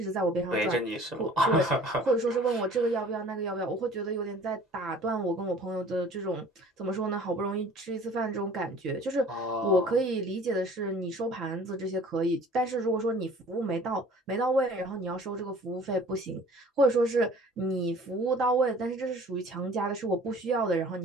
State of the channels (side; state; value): both; normal; correlation 0.49